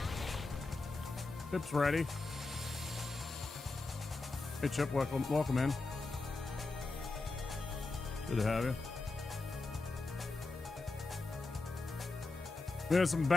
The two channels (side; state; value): right; quieter; 3.5 dB